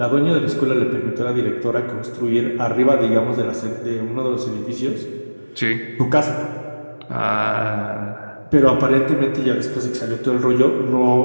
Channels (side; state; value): both; inverted; correlation -1.00